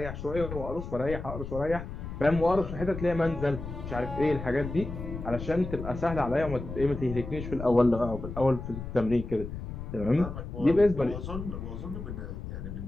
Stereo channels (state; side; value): noise; left; rumble, 8 dB below the sound